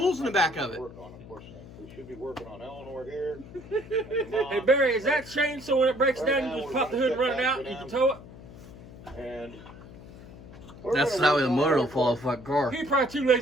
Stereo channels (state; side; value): noise; left; hum, 17 dB below the sound